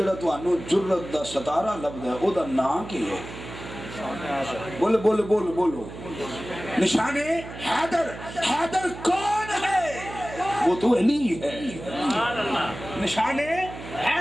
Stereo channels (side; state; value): right; noise; hum, 12 dB below the sound